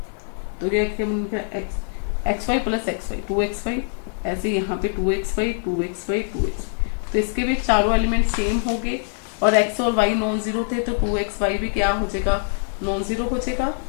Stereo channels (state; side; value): silent; right; 61 dB below the other